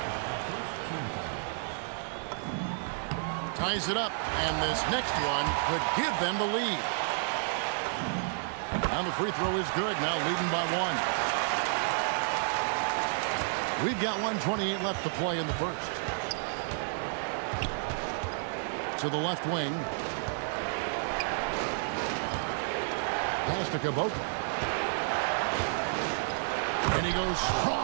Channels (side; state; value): left; silent; digital silence